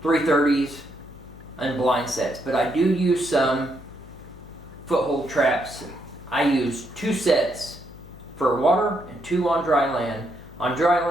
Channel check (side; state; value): left; noise; hum, 19 dB below the sound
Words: 330s and blind sets, but I do use some foothold traps. I use 2 sets for water and 2 on dry land. On dry